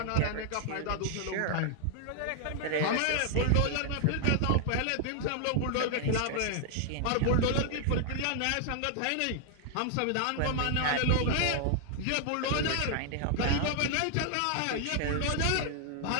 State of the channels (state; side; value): different; both; correlation 0.00